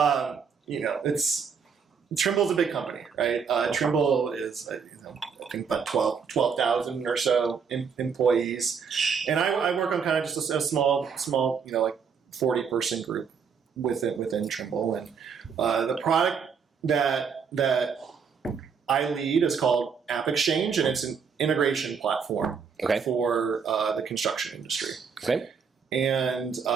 Trimble's a big company, right? Trimble is, I think about 12,000 or so employees. And I work on kind of just a small, like 40-person group within Trimble. And the product that I lead is called App Exchange, and it's an integration platform for the construction industry. Okay. And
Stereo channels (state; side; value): quieter; left; 6.3 dB